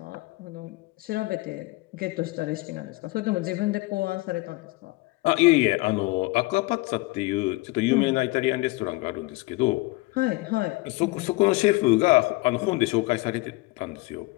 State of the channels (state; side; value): quieter; right; 22.7 dB